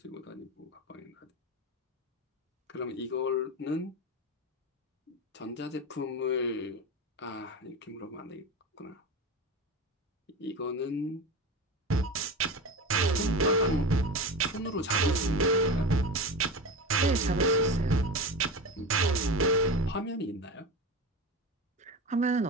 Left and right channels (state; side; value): normal; both; correlation 0.25